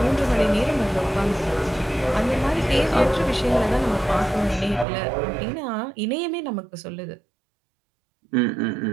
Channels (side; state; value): left; drops out; at 4.9 s